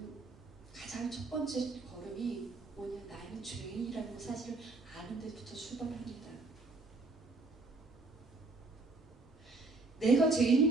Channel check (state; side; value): quieter; left; 3.4 dB